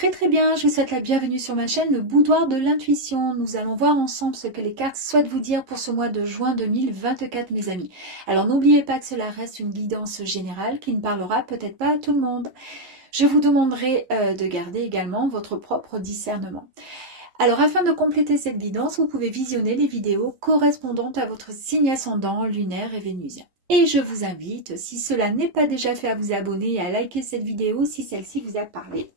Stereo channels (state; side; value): late; left; 11 ms